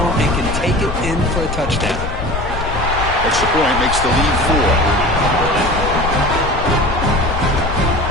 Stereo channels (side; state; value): left; noise; rumble, 5 dB below the sound